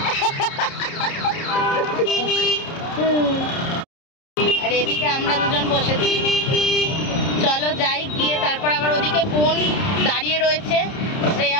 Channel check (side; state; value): right; late; 30 ms